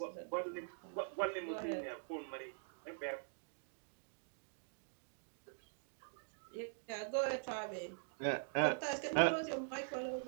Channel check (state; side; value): silent; left; digital silence